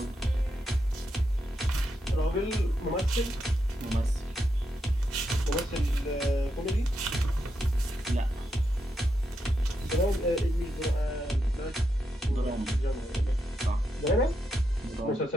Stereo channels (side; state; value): both; normal; correlation 0.83